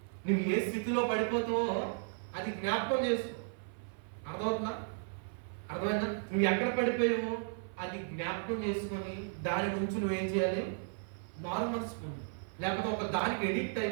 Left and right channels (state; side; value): silent; left; 55 dB below the other